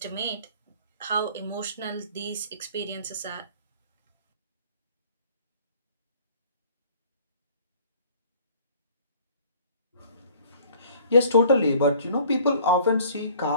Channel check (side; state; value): both; inverted; correlation -0.51